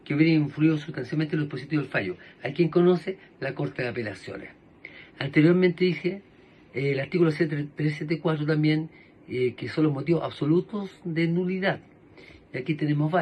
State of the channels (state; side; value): identical; both; correlation 1.00